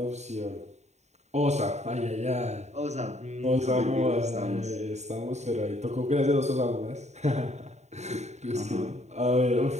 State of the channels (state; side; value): late; left; 0.32 ms